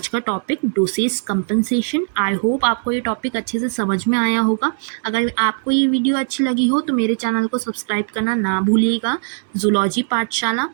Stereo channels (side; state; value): left; silent; 66 dB below the other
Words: का topic, dosage compensation. I hope आपको ये टॉपिक अच्छे से समझ में आया होगा। अगर आपको ये वीडियो अच्छी लगी हो तो मेरे चैनल को सब्सक्राइब करना ना भूलिएगा, जूलॉजी पाठशाला,